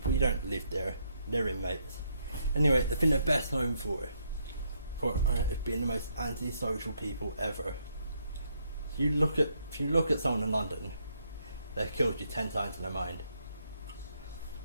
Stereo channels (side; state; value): both; inverted; correlation -0.75